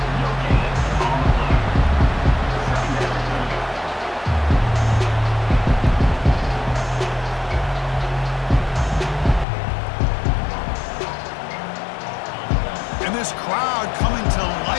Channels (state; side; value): drops out; right; at 9.5 s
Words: This crowd coming to